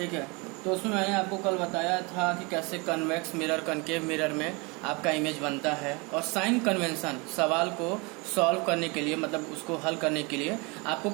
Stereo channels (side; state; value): left; quieter; 28.5 dB